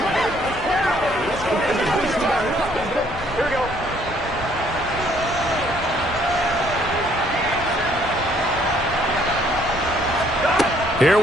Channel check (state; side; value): noise; right; rumble, 15 dB below the sound